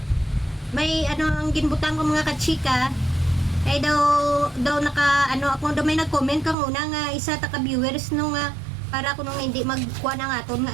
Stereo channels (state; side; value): drops out; left; at 6.6 s